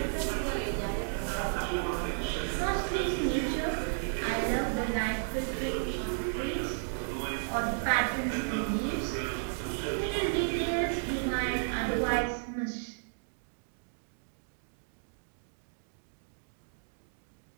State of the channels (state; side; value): silent; left; digital silence